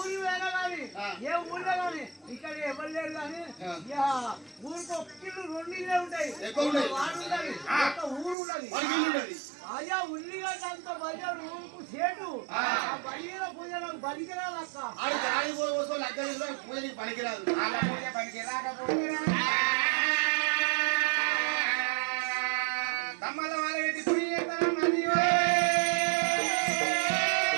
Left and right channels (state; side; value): drops out; left; at 8.3 s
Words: వేనా కానీ ఏ ఊళ్ళో కానీ ఇక్కడ ఎవరు లేరు కానీ ఊరికి ఒక్కళ్ళు రెండు ఇళ్ళే ఉంటాయి ఎక్కువ ఉన్నాయి. వాడు ఉన్నది ఒక ఊరు ఉన్నది మనకి ఉండదు అయ్యా ఉల్లిగడ్డ అంత బలియోడు ఊరుకు చెడు ఆ బలిగిన పూజ నాకు బలికిరాదు అక్క ఆడి గాడి పోసో లగ్గ పూజకి పనికిరాదు వాళ్ళ పూజ పనికి రాకపోతే తమ్మల వాళ్ళ పెట్టి పూజ చేస్తాను నదియో